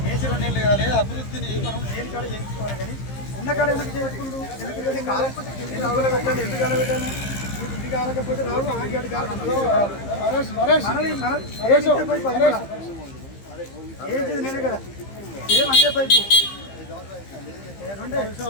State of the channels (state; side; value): late; right; 15 ms